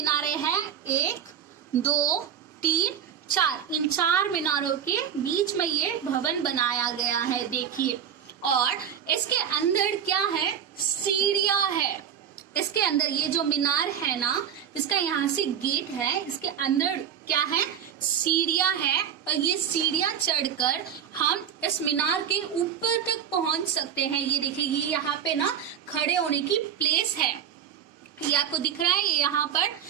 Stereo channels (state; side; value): quieter; left; 8.7 dB